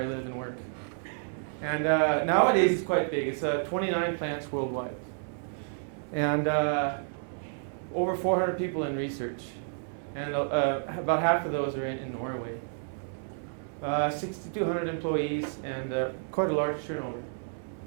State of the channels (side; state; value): left; silent; digital silence